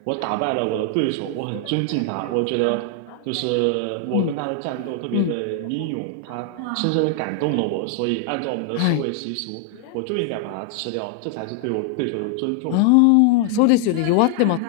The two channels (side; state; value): both; different; correlation 0.00